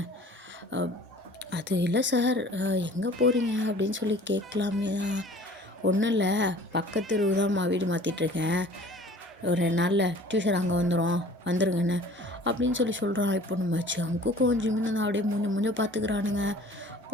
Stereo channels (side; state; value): both; normal; correlation 0.48